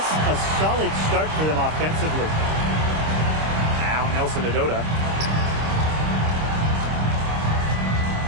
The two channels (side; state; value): left; late; 26 ms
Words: a solid start for them offensively. Now Nelson Adota.